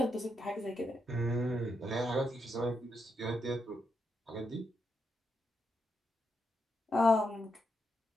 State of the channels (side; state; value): both; normal; correlation 0.82